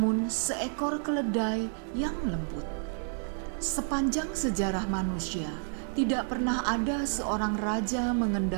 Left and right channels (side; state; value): left; silent; 58 dB below the other